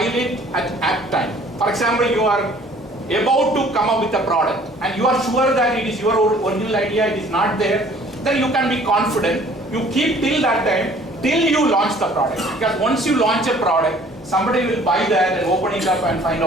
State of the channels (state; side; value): normal; both; correlation 0.54